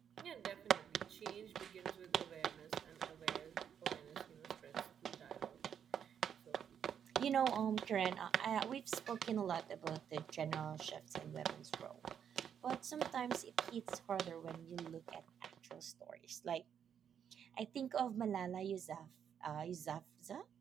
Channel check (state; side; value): quieter; left; 8.4 dB